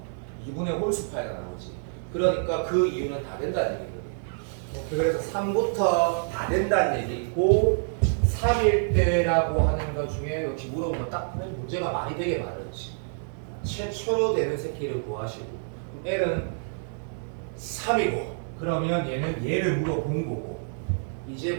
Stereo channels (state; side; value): silent; left; 60 dB below the other